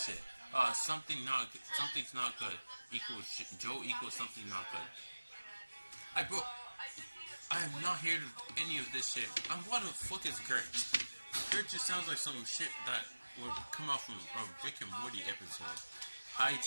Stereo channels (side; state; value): both; inverted; correlation -1.00